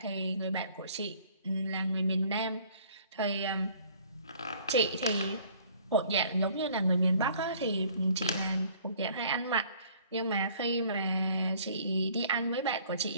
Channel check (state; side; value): inverted; both; correlation -0.56